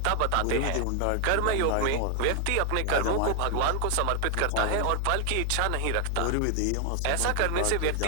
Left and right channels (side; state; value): both; different; correlation 0.00